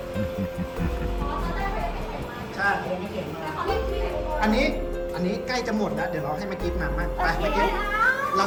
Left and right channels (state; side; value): identical; both; correlation 1.00